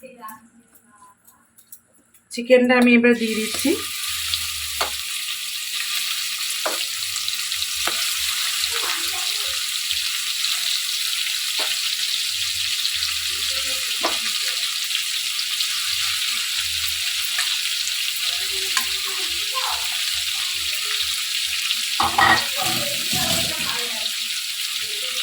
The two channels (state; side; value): identical; both; correlation 1.00